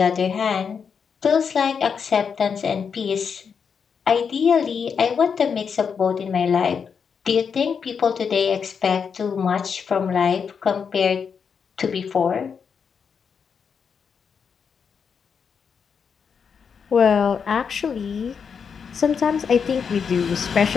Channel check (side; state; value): right; quieter; 6.4 dB